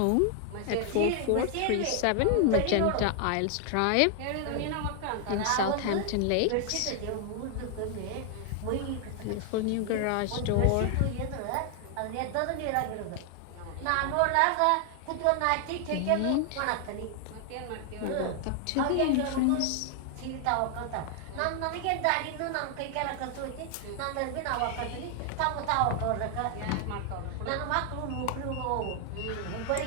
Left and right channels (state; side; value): different; both; correlation 0.00